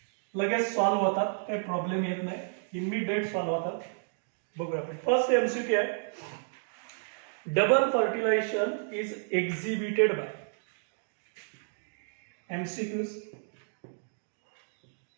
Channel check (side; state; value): left; silent; digital silence